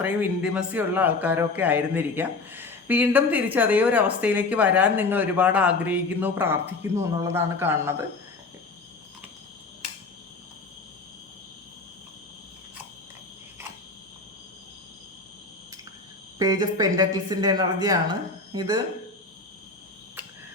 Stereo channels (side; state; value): right; quieter; 3.7 dB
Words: ഇൻറ്റിമസി ഉള്ള ആൾക്കാരോ ഒക്കെ ആയിരുന്നിരിക്കാം. വീണ്ടും തിരിച്ച് അതേ ഒരു അവസ്ഥയിലേക്ക് വരാൻ നിങ്ങൾ ഒരുപാട് ആഗ്രഹിക്കുന്നു, പ്രാർത്ഥിക്കുന്നു എന്നുള്ളതാണ് കാണുന്നത്. പേജ് ഓഫ് പെൻറ്റക്കിൾസിൻ്റെ എനർജിയാണ് ഇത്.